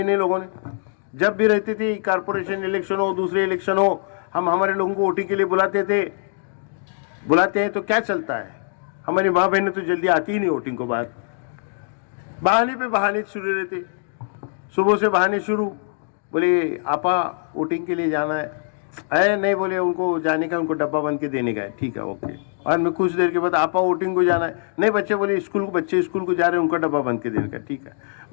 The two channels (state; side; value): silent; right; digital silence